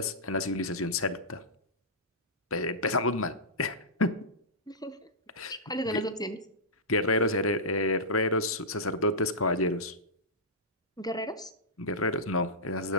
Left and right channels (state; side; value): normal; both; correlation -0.15